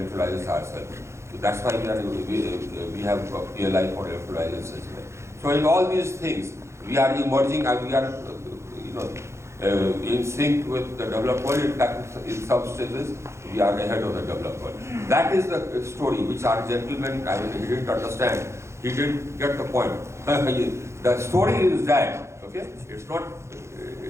ourselves. So that's why we have a PLI for electrolyzers as well. So in all these things, we are emerging and we are in sync with the developed world. In fact, in some stages, we are ahead of the developed world. That is the story which our gentleman, he didn't understand. He didn't get the point. The story is that, okay? It's not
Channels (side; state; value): left; late; 0.13 ms